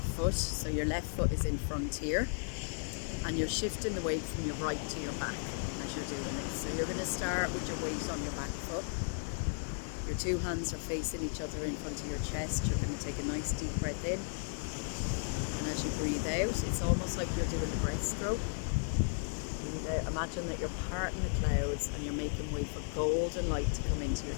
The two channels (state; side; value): silent; right; digital silence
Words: foot. So your left foot is in front here, and you're shifting the weight from your right to your back as you're doing it. So you're going to start with your weight on your back foot. Your two hands are facing each other in front of your chest. You're going to take a nice deep breath in. And as you breathe out, it's almost like you're doing a breaststroke. Breathe out. Imagine that you're parting the clouds and you're making way for golden light to come into your